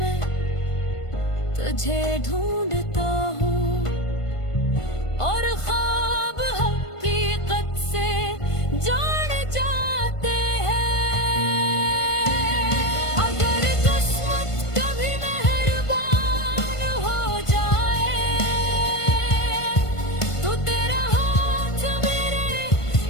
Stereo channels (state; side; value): late; right; 1.5 ms